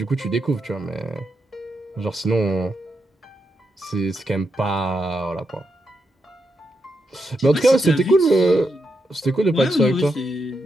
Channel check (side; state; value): both; normal; correlation 0.83